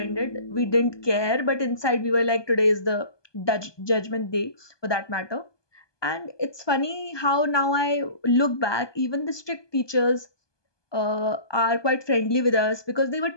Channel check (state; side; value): late; right; 1.2 ms